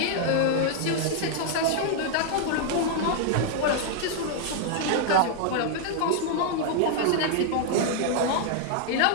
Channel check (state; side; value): different; both; correlation 0.00